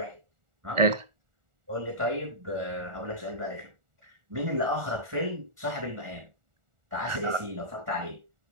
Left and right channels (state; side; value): late; left; 1.4 ms